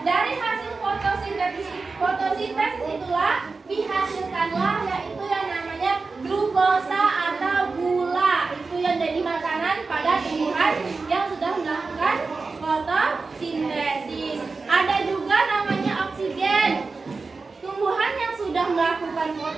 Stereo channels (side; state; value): left; quieter; 4.1 dB